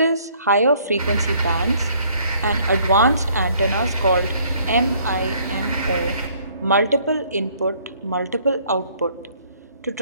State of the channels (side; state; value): both; inverted; correlation -0.62